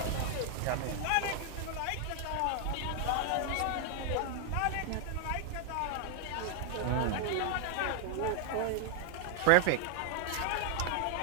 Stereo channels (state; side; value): different; both; correlation 0.00